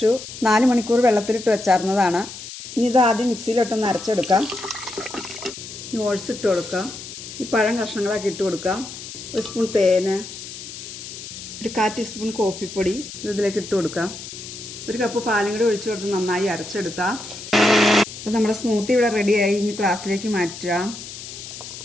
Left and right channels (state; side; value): noise; left; hiss, 12 dB below the sound